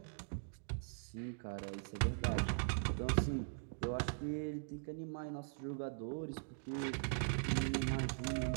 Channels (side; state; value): left; silent; digital silence